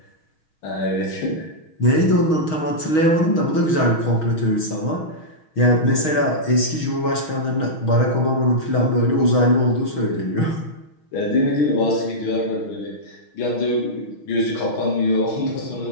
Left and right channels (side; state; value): right; late; 6.4 ms